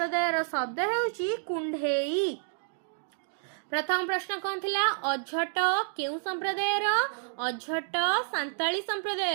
शब्द हेउची कुंढेई। प्रथम प्रश्न कौन थिला अझट केउं संप्रदायर अझट सांताली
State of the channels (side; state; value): left; silent; digital silence